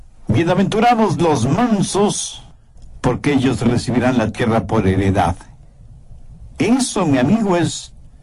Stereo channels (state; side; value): identical; both; correlation 1.00